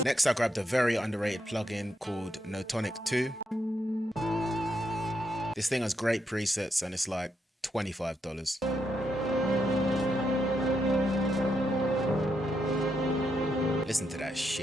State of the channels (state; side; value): normal; both; correlation 0.80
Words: Next, I grabbed a very underrated plugin called Notonic 2. This thing has great presets and it's like $25. Listen to that